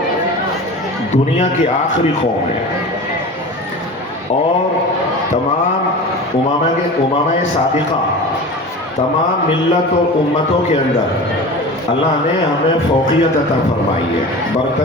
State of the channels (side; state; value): both; normal; correlation 0.34